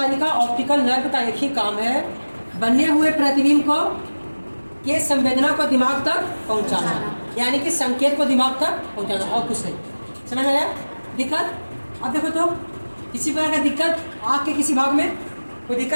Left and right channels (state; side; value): inverted; both; correlation -1.00